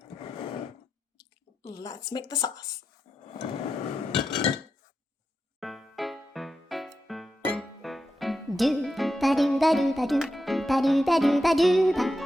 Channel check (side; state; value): both; normal; correlation 0.88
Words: Let's make the sauce. Do ba do ba do ba do ba do ba do ba do ba